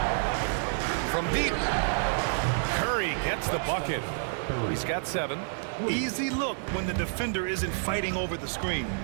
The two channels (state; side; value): silent; left; digital silence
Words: From deep. Curry gets the bucket. He's got 7. Easy look when the defender isn't fighting over the screen.